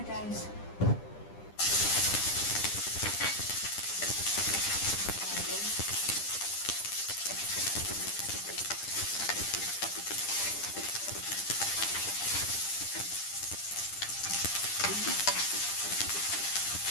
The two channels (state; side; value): late; right; 10 ms